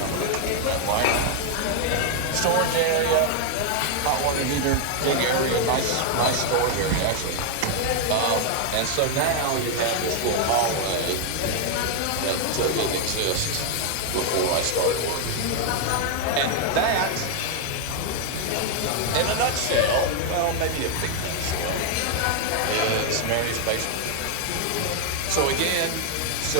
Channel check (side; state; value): both; different; correlation 0.00